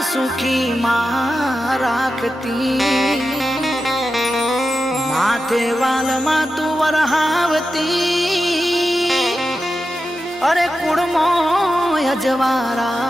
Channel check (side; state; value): both; normal; correlation 0.90